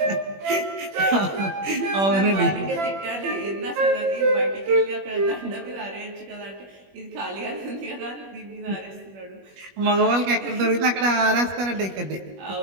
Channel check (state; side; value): late; left; 21 ms